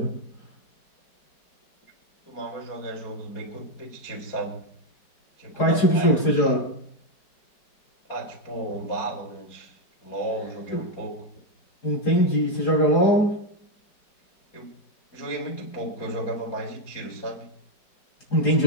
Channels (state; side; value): late; right; 4.9 ms